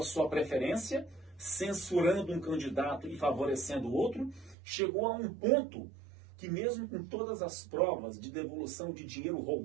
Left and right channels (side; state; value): left; drops out; at 4.5 s